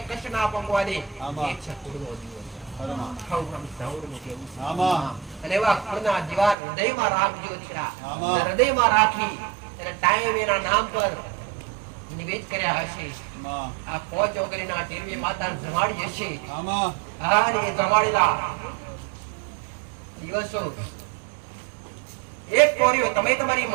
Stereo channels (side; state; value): left; drops out; at 6.6 s